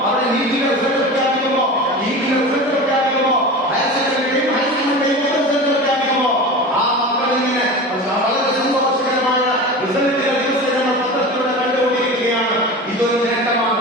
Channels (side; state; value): both; normal; correlation 0.31